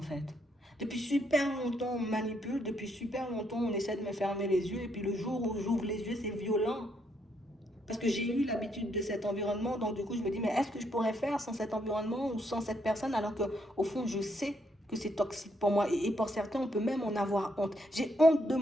fait. Depuis super longtemps on manipule, depuis super longtemps on essaie de me fermer les yeux et puis le jour où j'ouvre les yeux c'est violent. Parce que j'ai eu l'habitude de cet environnement, donc du coup je me dis, mais est-ce que je pourrais faire sans cet environnement ou sans cette personne alors que au fond je sais que c'est toxique pour moi et pour certains on peut même en avoir honte. J'ai honte de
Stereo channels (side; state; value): both; normal; correlation 0.74